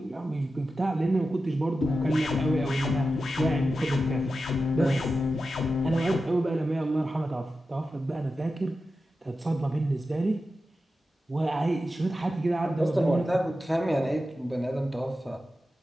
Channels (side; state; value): both; normal; correlation 0.92